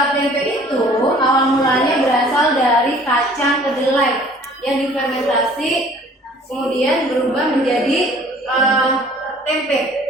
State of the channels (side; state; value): both; normal; correlation 0.53